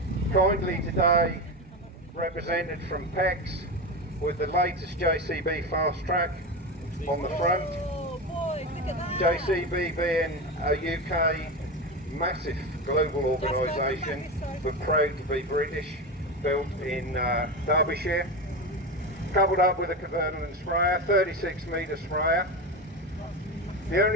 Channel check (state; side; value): normal; both; correlation 0.20